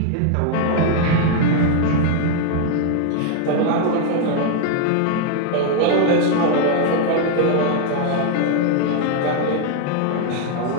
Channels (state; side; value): different; both; correlation 0.00